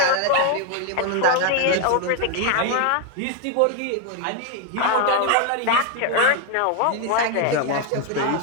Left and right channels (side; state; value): both; different; correlation 0.01